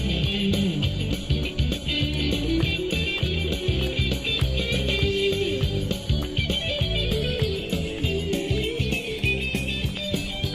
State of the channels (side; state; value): both; identical; correlation 1.00